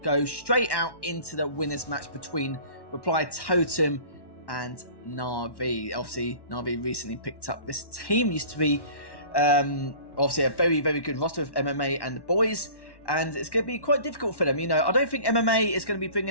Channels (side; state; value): right; late; 1.1 ms